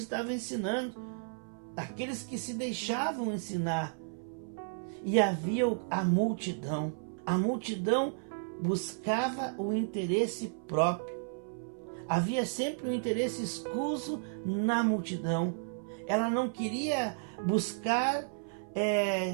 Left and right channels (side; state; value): left; silent; 56 dB below the other